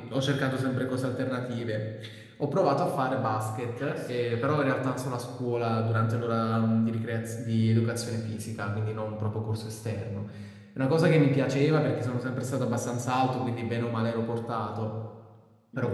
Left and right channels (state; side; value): identical; both; correlation 1.00